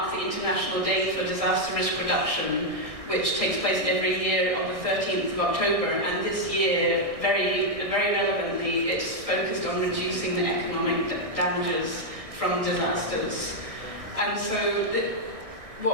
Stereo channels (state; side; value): late; left; 1.6 ms